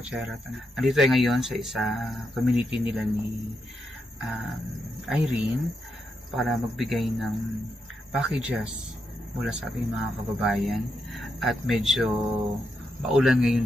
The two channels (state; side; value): normal; both; correlation 0.83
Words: Nandito tayo ngayon sa isa community nila ni Irene para magbigay ng packages mula sa ating mga kababayan. At medyo maulan